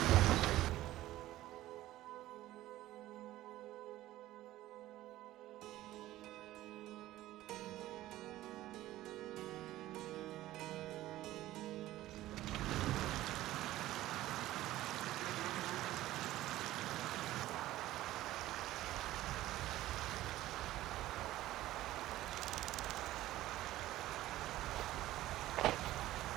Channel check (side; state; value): left; quieter; 15.4 dB